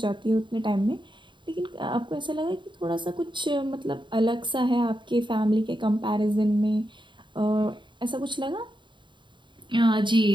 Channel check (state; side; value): late; left; 0.23 ms